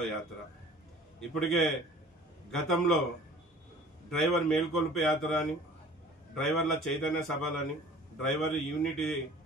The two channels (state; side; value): normal; both; correlation 0.47